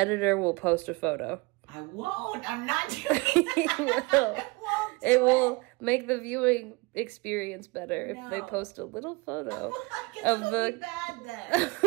will post a photo. I won't. I'm not doing that. It will make the viewing experience better if they post a little photo of the bad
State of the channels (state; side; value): quieter; left; 25.7 dB